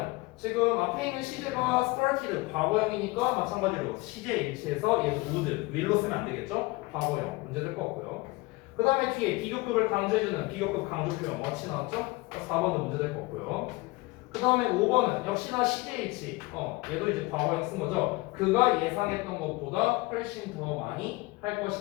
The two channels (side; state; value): right; quieter; 22.6 dB